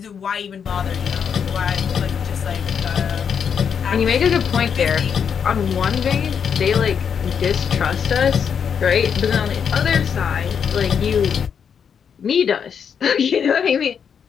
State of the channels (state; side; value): quieter; right; 7.2 dB